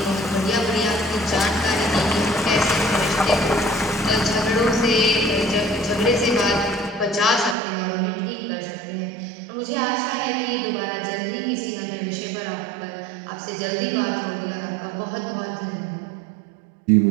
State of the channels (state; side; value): drops out; left; at 7.6 s